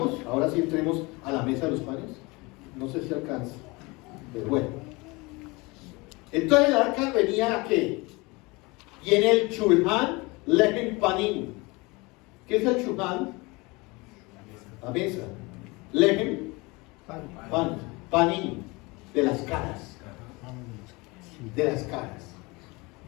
ahora sí entremos a la mesa de los panes. No sé si alcanza, pero bueno. Entonces el arca venía a qué? Y en el Shulhan Lechem Panim. ¿Qué es el Shulhan? La mesa. Lechem Pan. Panim. De las caras. De las caras.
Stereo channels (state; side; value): quieter; right; 25.0 dB